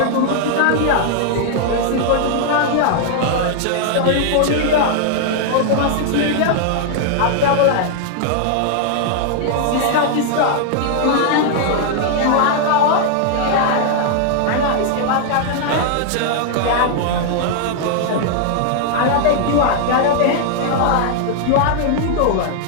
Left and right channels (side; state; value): both; different; correlation 0.00